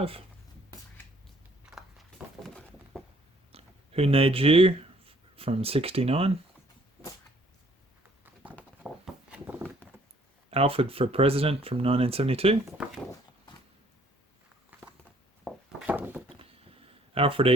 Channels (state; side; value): normal; both; correlation 0.62